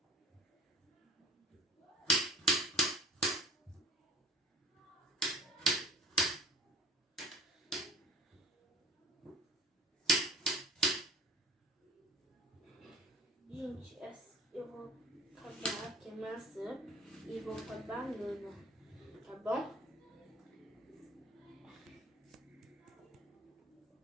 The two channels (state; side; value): normal; both; correlation 0.43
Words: Gente, eu vou acabar aqui a maçã e vou com a banana, tá bom?